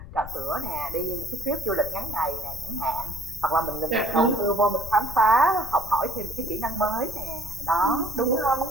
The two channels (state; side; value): noise; left; rumble, 13 dB below the sound